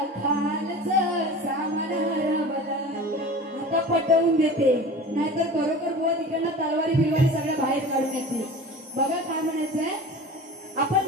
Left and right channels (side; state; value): both; normal; correlation 0.36